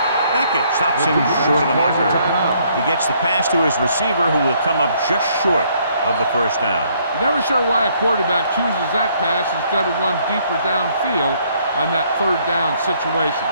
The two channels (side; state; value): both; inverted; correlation -0.66